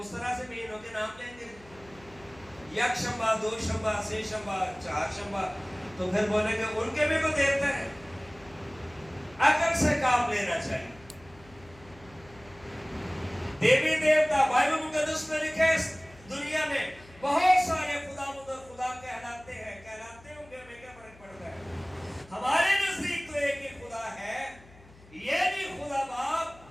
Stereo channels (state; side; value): noise; left; hum, 24 dB below the sound